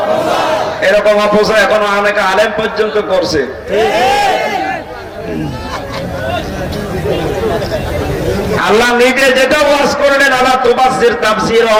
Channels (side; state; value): both; identical; correlation 1.00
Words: এরকম অপচয় এখনো অনেক আলেম পর্যন্ত করছে। আল্লাহ নিজে যেটা ওয়াজ করলেন, আল্লাহ তুবাজ্জির তাবযীরা,